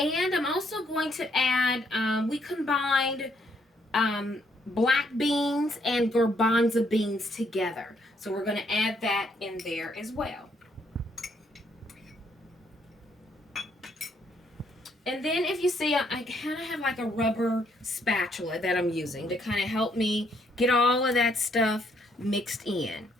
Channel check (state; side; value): normal; both; correlation 0.71